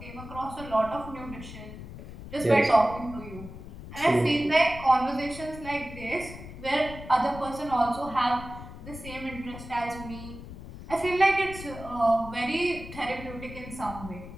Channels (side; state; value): left; noise; rumble, 13 dB below the sound